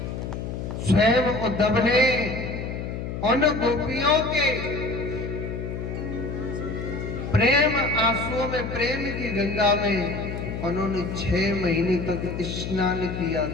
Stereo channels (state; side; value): noise; left; hum, 5 dB below the sound